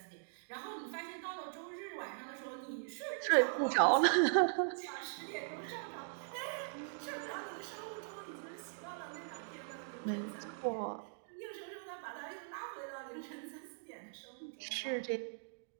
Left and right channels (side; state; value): left; silent; digital silence